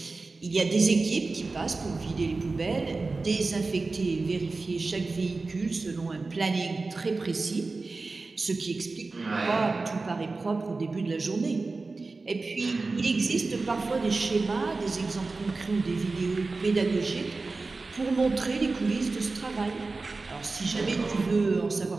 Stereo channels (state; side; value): quieter; left; 3.7 dB